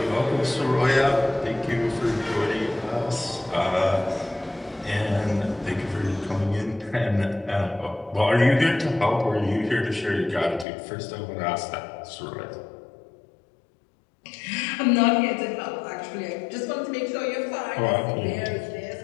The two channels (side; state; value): right; drops out; at 10.7 s